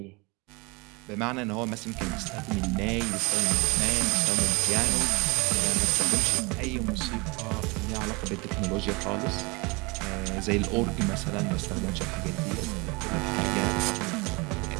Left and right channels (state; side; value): quieter; left; 27.1 dB